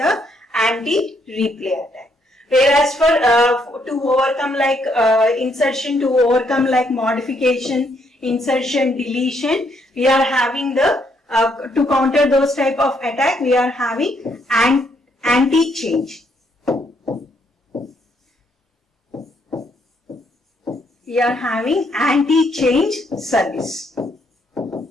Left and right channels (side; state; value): both; normal; correlation 0.72